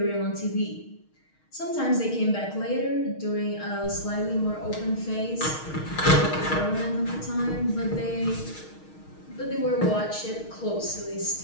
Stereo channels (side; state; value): right; late; 6.4 ms